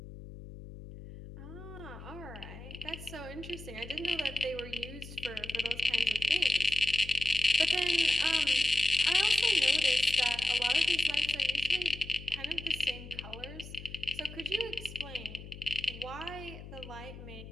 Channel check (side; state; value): left; noise; hum, 13 dB below the sound